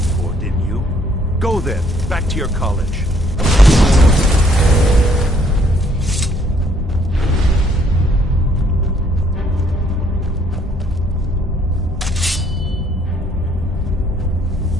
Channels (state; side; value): normal; both; correlation 0.65